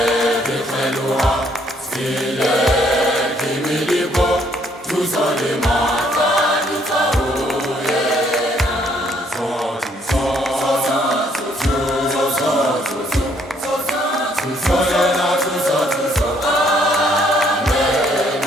dikheluha, stile kimilibo, tuzole mata ditoyena. Tuzolena, tuzo, amen,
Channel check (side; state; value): both; normal; correlation 0.67